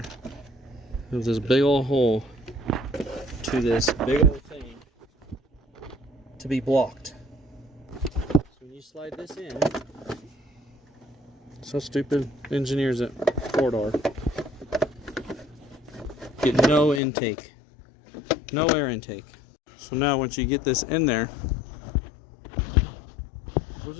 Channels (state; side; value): drops out; right; at 17.0 s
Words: There's this big old hole to this big old thing to be blocked. So when you slide this in, so stupid engineers at Ford are. Get no intake, no air intake. So now once you get this in there, where's